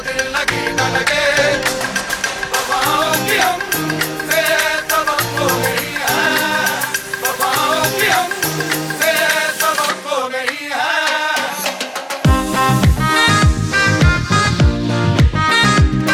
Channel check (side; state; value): both; identical; correlation 1.00